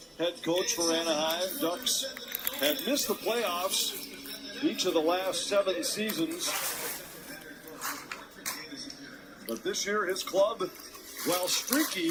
The head coach for Anaheim Ducks had missed the playoffs each of the last 7 seasons. But this year, his club, while streaky,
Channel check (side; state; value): both; identical; correlation 1.00